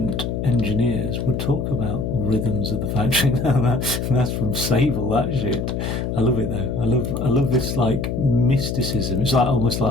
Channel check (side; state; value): left; noise; hum, 2 dB below the sound